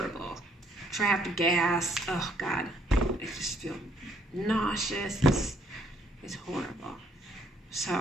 Trapped gas. Oh God, I just feel nauseous. It's horrible.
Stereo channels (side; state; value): both; normal; correlation 0.67